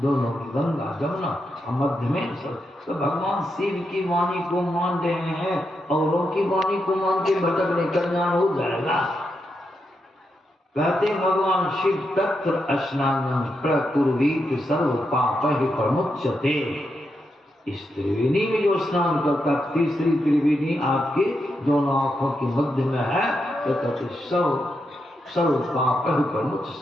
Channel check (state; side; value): normal; both; correlation 0.84